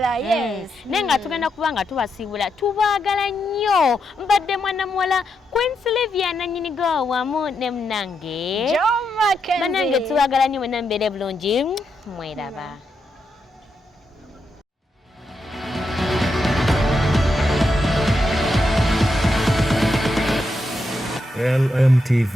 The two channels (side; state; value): both; normal; correlation 0.83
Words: Yes, nenga tugenda kuba nga tubasibula tubaagala nnyo. Mbadde mwana muwala Queen Sylvia nanyini go wamu ne mnange John Mackenzie banange tubaagala nnyo mwenna mbeere bulungi mweraba.